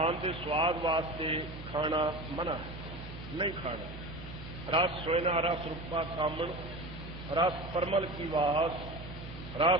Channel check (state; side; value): noise; right; hum, 12 dB below the sound